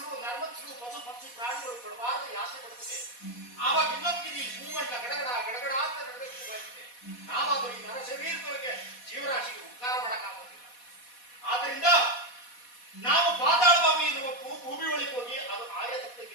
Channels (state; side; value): late; right; 4.1 ms